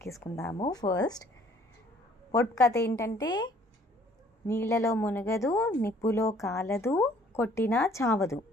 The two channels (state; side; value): normal; both; correlation 0.58